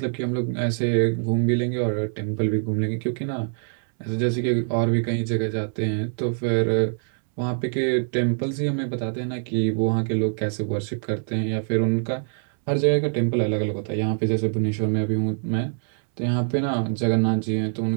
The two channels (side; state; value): left; silent; 62 dB below the other